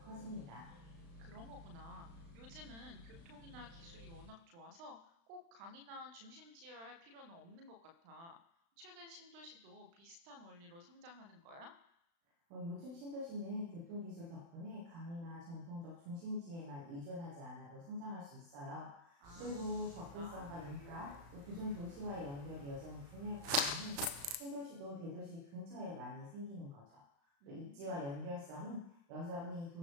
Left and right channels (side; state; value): left; late; 35 ms